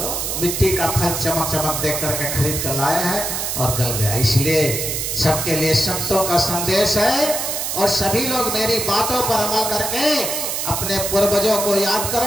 मिट्टी का फल चमक चमक देख करके खरीद कर लाया है और गल गया। इसलिए सबके लिए संतों का संदेश है, और सभी लोग मेरी बातों पर अमल करके अपने पूर्वजों को याद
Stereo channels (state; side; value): noise; right; hiss, 2 dB below the sound